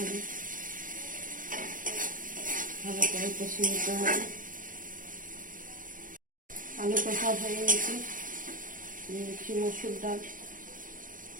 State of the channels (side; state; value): left; late; 0.39 ms